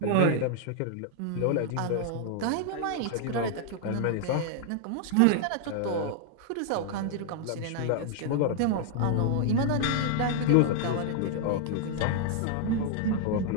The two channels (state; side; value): different; both; correlation 0.00